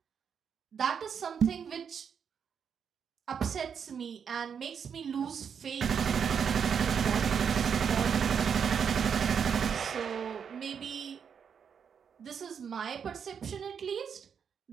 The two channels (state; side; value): quieter; left; 7.1 dB